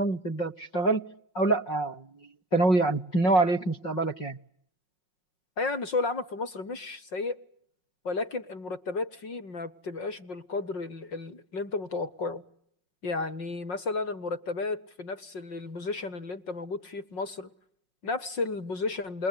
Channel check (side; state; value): right; late; 5.5 ms